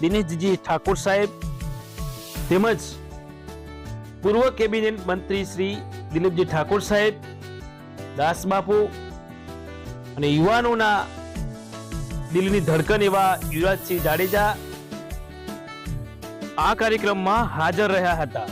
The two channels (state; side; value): identical; both; correlation 1.00